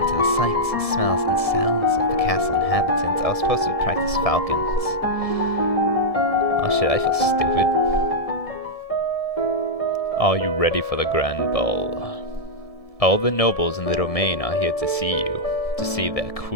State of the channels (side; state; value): right; late; 1.7 ms